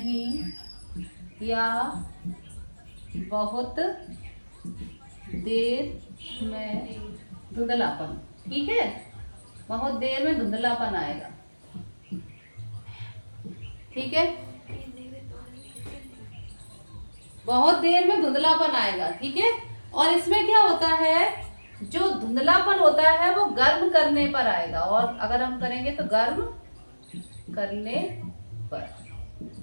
या बहुत देर में धुंधलापन, ठीक है, बहुत देर में धुंधलापन आएगा, ठीक है, बहुत देर में धुंधलापन आएगा, ठीक है। और इसमें क्या होता है, जो धुंधलापन होता है वो गर्म करने पर आएगा, और अगर हम करेंगे तो गर्म करने पर।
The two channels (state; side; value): inverted; both; correlation -1.00